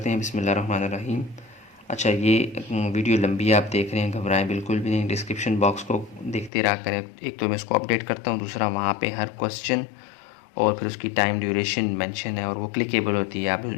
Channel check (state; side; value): drops out; right; at 6.5 s